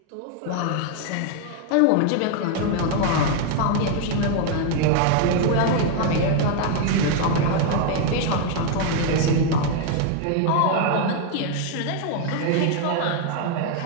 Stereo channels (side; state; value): both; different; correlation 0.00